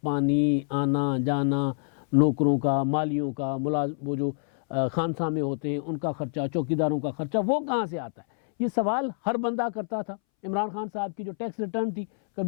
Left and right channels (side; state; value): right; silent; 60 dB below the other